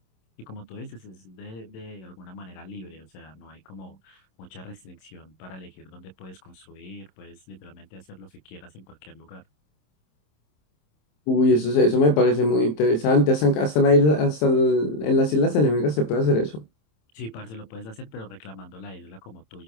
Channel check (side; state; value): right; late; 27 ms